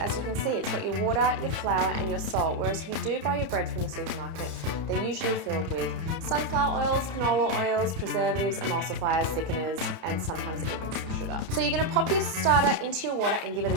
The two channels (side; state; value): left; late; 31 ms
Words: you can see. It's got your water, your flour, and your salt. Whereas if you do buy your bread from the supermarket, they're usually filled with sunflower oils, canola oils, preservatives, emulsifiers, thickeners, and sometimes even some sugar. So you're going to pop your starter into your water and give it